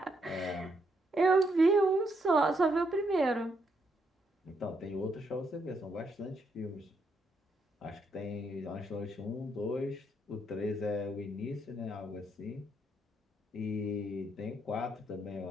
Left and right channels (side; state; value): both; normal; correlation 0.76